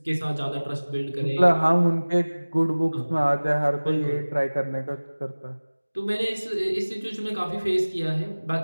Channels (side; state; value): both; inverted; correlation -1.00